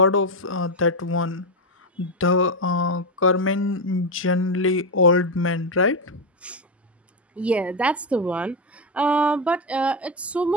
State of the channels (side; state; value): both; normal; correlation 0.08